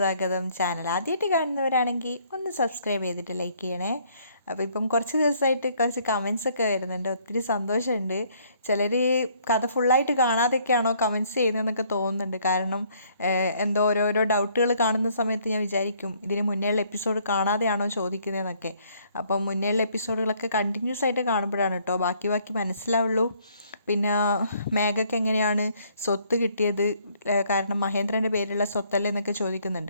ചാനൽ ആദ്യമായിട്ട് കാണുന്നവരാണെങ്കിൽ ഒന്ന് സബ്സ്ക്രൈബ് ചെയ്തിട്ട് ലൈക്ക് ചെയ്യണേ. അപ്പോൾ ഇപ്പം കുറച്ച് ദിവസമായിട്ട് കുറച്ച് കമൻസൊക്കെ വരുന്നുണ്ട്, ഒത്തിരി സന്തോഷമുണ്ട്. ചിലർ കഥ ഫുള്ളായിട്ട് കാണാതെയൊക്കെയാണോ കമൻസ് ചെയ്യുന്നതെന്നൊക്കെ തോന്നുന്നുണ്ട്. കാരണം എന്തോ ഓരോരോ ഡൗട്ടുകൾ കാണുന്ന സമയത്ത് ഞാൻ വിചാരിക്കും ഇതിന് മുന്നേയുള്ള എപ്പിസോഡ് കാണാതെയാണോ ചോദിക്കുന്നതെന്നൊക്കെ. അപ്പം മുന്നേയുള്ള എപ്പിസോഡുകളൊക്കെ കണ്ടിന്യൂസ് ആയിട്ട് കാണുമ്പോഴാണ് കേട്ടോ ബാക്കി മനസ്സിലാവുള്ളൂ. പിന്നെ മേഘയ്ക്ക് എങ്ങനെയാണ് സ്വത്ത് കിട്ടിയത്, കാരണം മഹേന്ദ്രൻ്റെ പേരിലുള്ള സ്വത്തല്ലേ എന്നൊക്കെ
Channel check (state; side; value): inverted; both; correlation -0.64